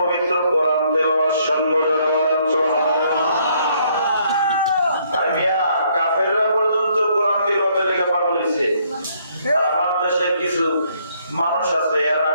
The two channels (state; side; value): inverted; both; correlation -0.68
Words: কোরআন তেলাওয়াত শুনবো। যারা বলেন সুবহানাল্লাহ। আর মিয়া কাফেররা পর্যন্ত কোরআন তেলাওয়াতের লেগে পাগল হইছে। আমার দেশের কিছু মানুষ আছে এরা